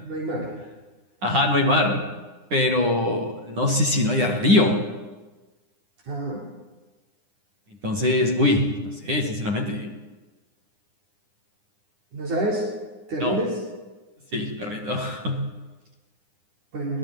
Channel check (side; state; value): left; late; 9.8 ms